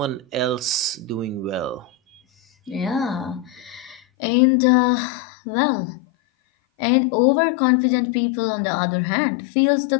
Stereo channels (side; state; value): right; drops out; at 4.0 s